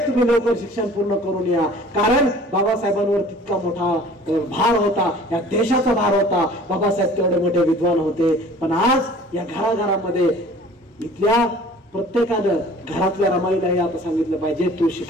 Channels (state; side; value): normal; both; correlation 0.48